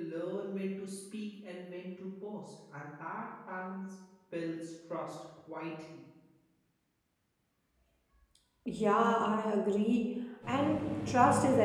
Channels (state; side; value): identical; both; correlation 1.00